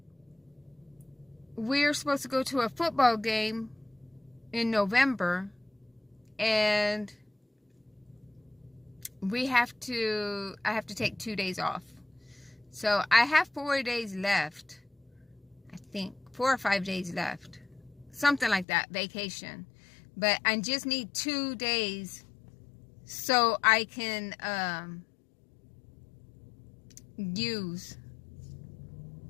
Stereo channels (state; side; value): drops out; right; at 18.7 s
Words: we're supposed to go to a football game in November, and I have to take 2 days off. So I have 4 days left. I think 4 or 5 days left. Something like that, vacation. But I just need 2 days so I can I